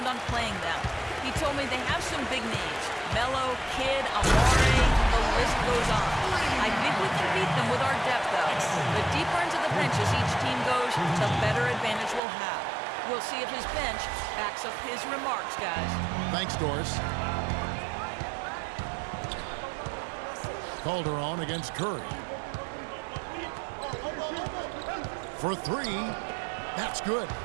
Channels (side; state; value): left; drops out; at 12.2 s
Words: on playing them. He told me they have some big names. Melo, Kidd, Amare, the list goes on. I think we can beat them with our depth, though. The deeper into the benches each team goes, the better advantage we'll have. We'll see if his bench backs up his remarks, guys. Thanks, Doris. Calderon against Curry. For 3, that's good.